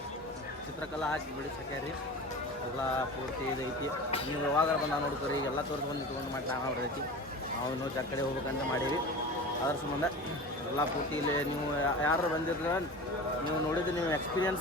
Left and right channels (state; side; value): normal; both; correlation 0.33